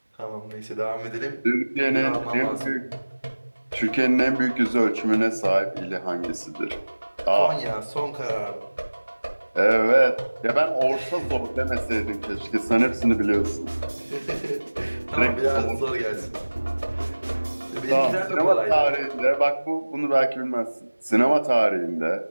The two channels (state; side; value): inverted; both; correlation -1.00